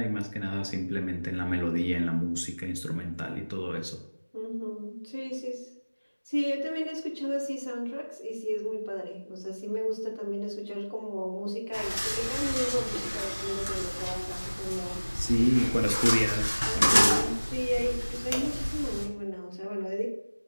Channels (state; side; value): inverted; both; correlation -1.00